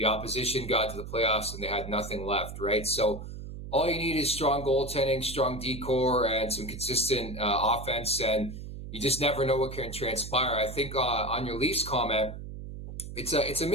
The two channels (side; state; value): right; noise; hum, 10 dB below the sound